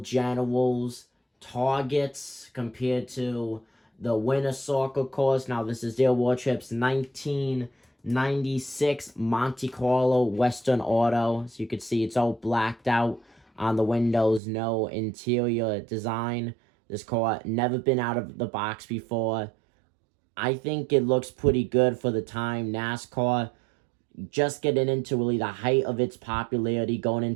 Generals, Targets, compared to the Winner Circle cars. Now this is Dale Wardrop's 1996 Monte Carlo Western Auto. So you can see it's all blacked out on the windows, no interior design. This car never been out of the box before. I think it looks pretty good for the time. NASCAR just getting into really the height of its popularity, going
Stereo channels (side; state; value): left; drops out; at 14.4 s